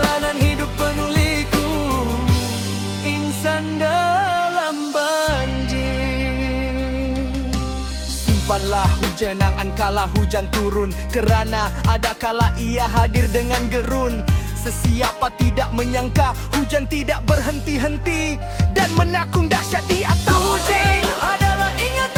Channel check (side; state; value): both; identical; correlation 1.00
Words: hidup penuh liku, insan dalam banjir. Simpanlah hujan angan kala hujan turun, kerana ada kala ia hadir dengan gerun. Sesiapa tidak menyangka hujan tidak berhenti-henti, dan menakung dahsyat di atas. Hujan adalah